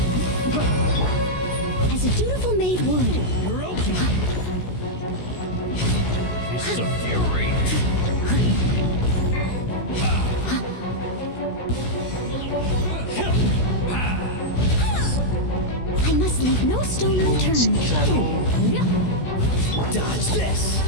As a dutiful maid would. You're open! It's a fury. I must leave no stone unturned. Dodge this!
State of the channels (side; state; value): right; late; 16 ms